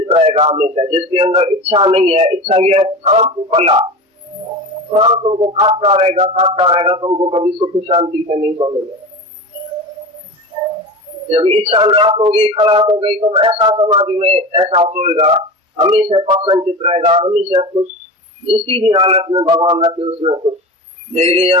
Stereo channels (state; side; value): normal; both; correlation 0.29